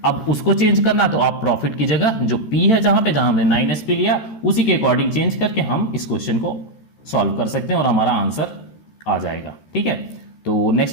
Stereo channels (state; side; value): late; right; 13 ms